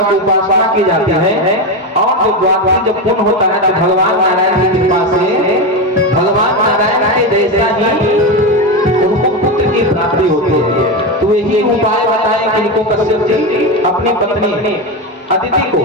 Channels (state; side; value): normal; both; correlation 0.15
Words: की उपासना की जाती है और जो द्वादशी जब पूर्ण होता है तो भगवान नारायण की कृपा से भगवान नारायण के जैसा ही उनको पुत्र की प्राप्ति होती है। तो यही उपाय बताएं कि इनको कश्यप जी अपनी पत्नी अदिति